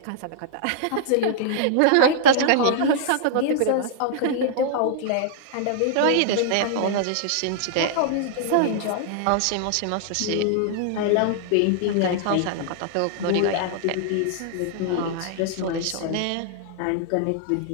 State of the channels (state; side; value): different; both; correlation -0.01